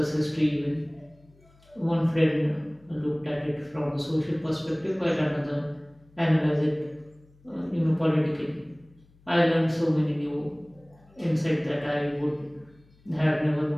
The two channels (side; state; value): left; noise; hum, 29 dB below the sound